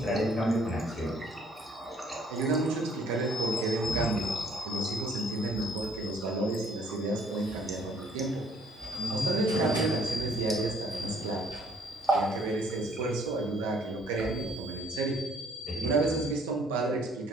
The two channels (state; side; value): normal; both; correlation 0.62